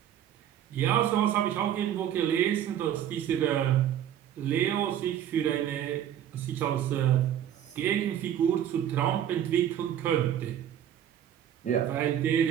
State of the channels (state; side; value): quieter; left; 10.4 dB